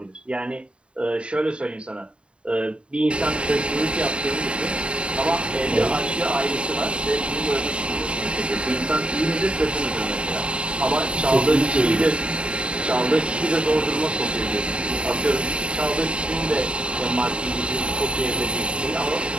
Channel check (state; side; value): late; left; 0.056 ms